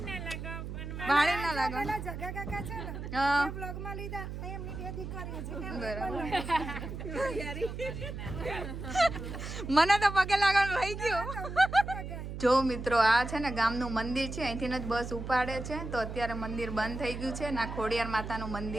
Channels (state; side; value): noise; right; hum, 7 dB below the sound